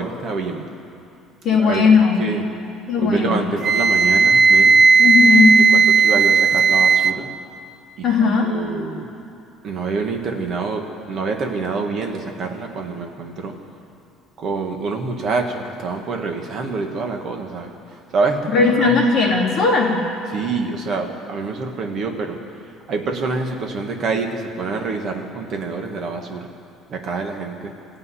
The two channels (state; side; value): normal; both; correlation 0.70